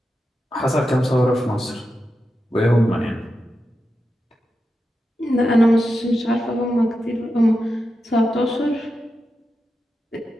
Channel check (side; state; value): both; normal; correlation 0.89